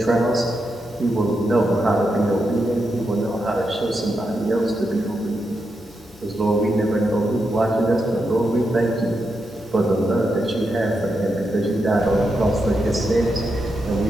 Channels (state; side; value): normal; both; correlation 0.85